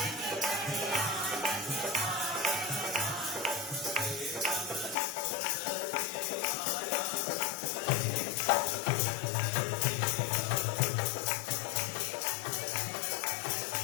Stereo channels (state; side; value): drops out; right; at 5.0 s